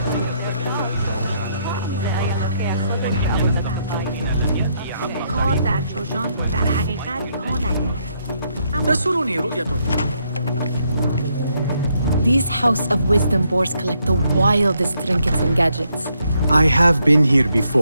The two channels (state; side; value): inverted; both; correlation -0.75